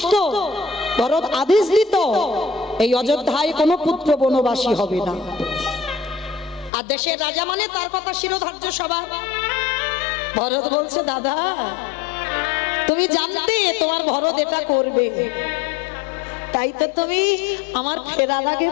ভরত আদেশ দিত এই অযোধ্যায় কোনো পুত্র বনবাসী হবে না, আর দেশের রাজা মানে তার কথা শিরোধার্য সবার। ভরত বলছে, দাদা তুমি জানতে তোমার ভরত এটা করবে, তাই তো তুমি আমার ফেরার আগে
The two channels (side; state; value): right; drops out; at 6.7 s